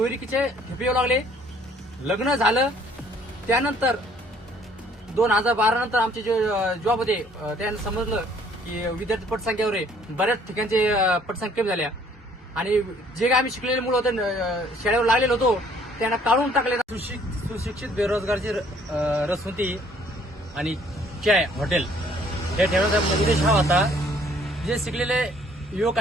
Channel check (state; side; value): normal; both; correlation 0.60